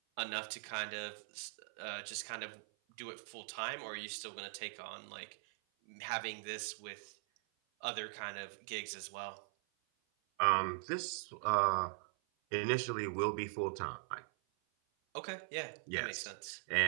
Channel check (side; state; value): left; silent; 50 dB below the other